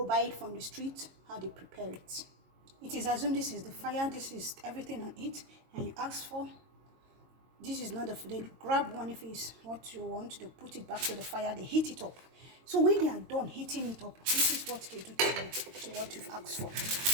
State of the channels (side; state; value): left; late; 22 ms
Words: buy it from the street, how they prepare it. It is assumed this is the fire, this is everything on it, and you ask for. This is not the food. They grab one if it's what you want, they put it back to the fire, they heat it up. So when they are done heating it up, this is what they do to you, to what you've asked for.